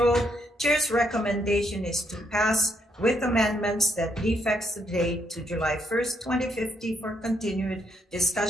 Chair's recommendation is to pass with amendments that defects the date to July 1st, 2050 for continued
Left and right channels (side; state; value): both; normal; correlation 0.75